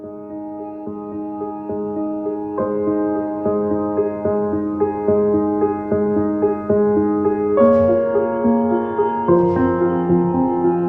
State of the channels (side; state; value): both; identical; correlation 1.00